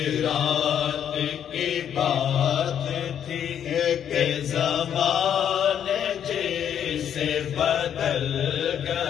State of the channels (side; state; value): right; quieter; 9.2 dB